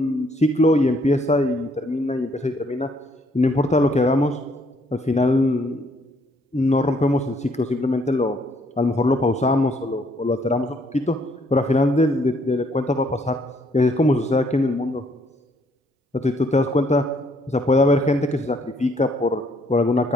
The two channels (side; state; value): both; normal; correlation 0.67